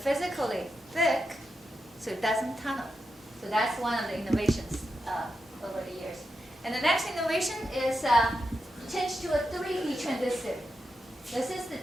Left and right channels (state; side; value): normal; both; correlation 0.87